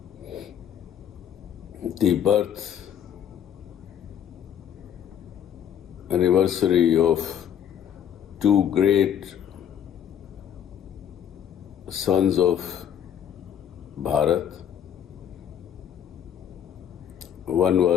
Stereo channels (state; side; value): quieter; right; 9.3 dB